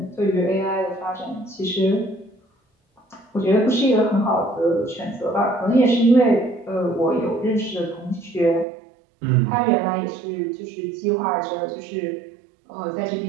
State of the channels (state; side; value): drops out; left; at 8.7 s